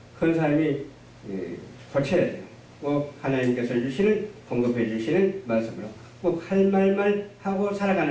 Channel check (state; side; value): identical; both; correlation 1.00